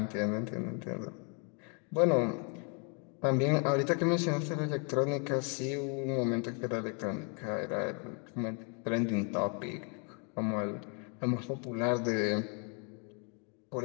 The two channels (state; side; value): quieter; right; 37.7 dB